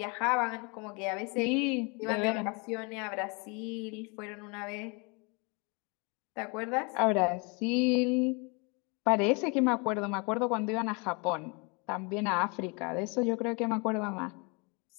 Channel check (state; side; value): quieter; right; 31.2 dB